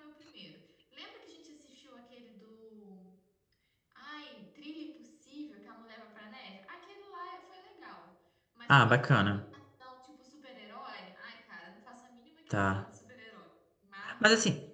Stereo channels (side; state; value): both; identical; correlation 1.00